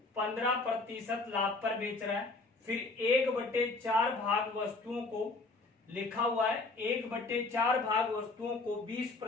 15% लाभ पर बेच रहा है। फिर 1/4 भाग वस्तुओं को लिखा हुआ है 1/4 भाग वस्तुओं को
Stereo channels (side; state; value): right; quieter; 3.5 dB